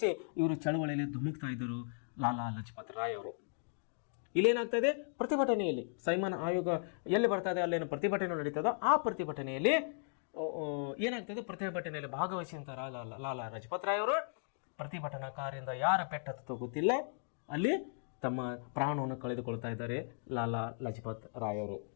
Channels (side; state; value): right; silent; digital silence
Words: ಇವರು ಚಳವಳಿಯಲ್ಲಿ ಧುಮುಕ್ತಾ ಇದ್ದರು ಲಾಲಾ ಲಜಪತ್ ರಾಯ್ ಅವರು. ಇಲ್ಲೇನಾಗ್ತಾ ಇದೆ, ಪ್ರತಿಭಟನೆಯಲ್ಲಿ ಸೈಮನ್ ಆಯೋಗ ಎಲ್ಲಿ ಬರ್ತಾ ಇದೆ ಅಲ್ಲೇನು ಪ್ರತಿಭಟನೆ ನಡೀತದೋ ಆ ಪ್ರತಿಭಟನೆಯಲ್ಲಿ ಏನಾಗ್ತದೆ, ಪ್ರತಿಭಟನೆಯಲ್ಲಿ ಭಾಗವಹಿಸಿದಂಥ ಲಾಲಾ ಲಜಪತ್ ರಾಯ್ ಅವರು ಪ್ರತಿಭಟನಾಕಾರರಿಂದ ಯಾರ ಪೆಟ್ಟತ್ತೋ ಗೊತ್ತಿಲ್ಲ ಅಲ್ಲಿ ತಮ್ಮ ಪ್ರಾಣವನ್ನು ಕಳೆದುಕೊಳ್ತಾ ಇದ್ದಾರೆ ಲಾಲಾ ಲಜಪತ್ ರಾಯ್ ಅವರು.